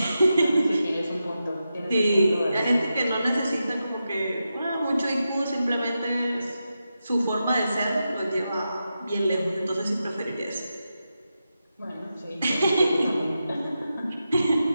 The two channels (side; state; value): both; inverted; correlation -0.89